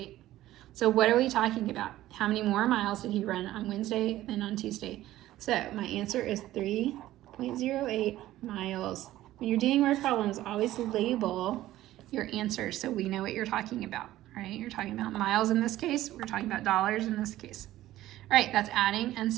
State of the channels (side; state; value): left; quieter; 14.8 dB